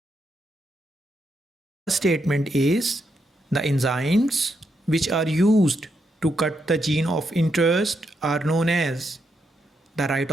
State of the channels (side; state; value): both; normal; correlation 0.80